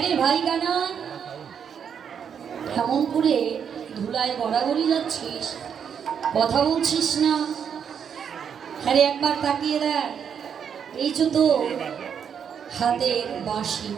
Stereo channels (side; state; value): left; quieter; 7.6 dB